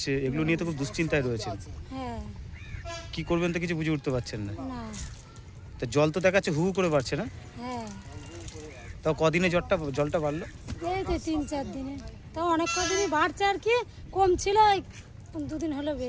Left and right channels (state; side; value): identical; both; correlation 1.00